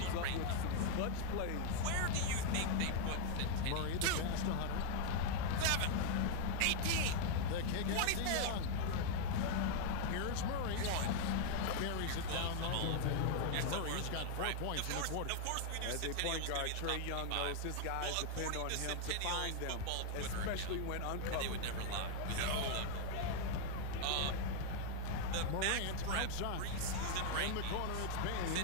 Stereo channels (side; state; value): both; different; correlation 0.00